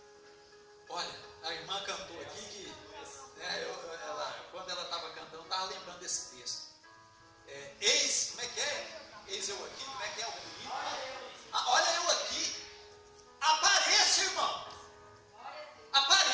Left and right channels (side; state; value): both; identical; correlation 1.00